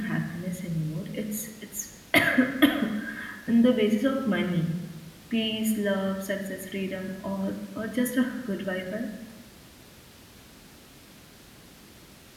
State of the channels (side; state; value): both; identical; correlation 1.00